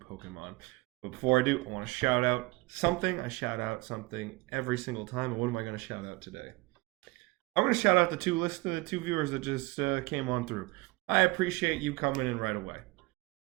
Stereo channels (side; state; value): left; quieter; 23.1 dB